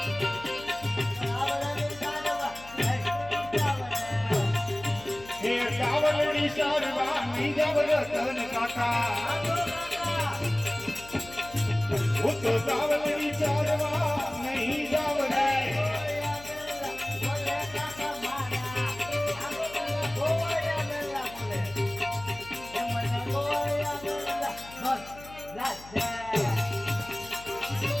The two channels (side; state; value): left; noise; hum, 19 dB below the sound